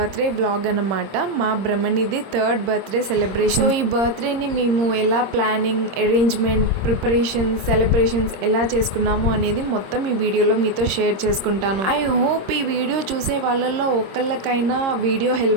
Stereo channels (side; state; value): left; late; 26 ms